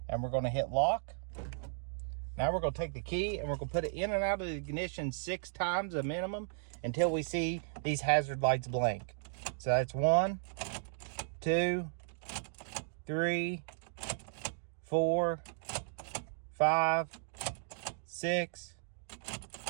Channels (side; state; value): left; silent; digital silence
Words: And we're going to hit lock. Now we're going to take the key and we're going to put it in and out of the ignition 6 times a minimum until we see these hazard lights blink. So that's 1, 2, 3, 4, 5, 6,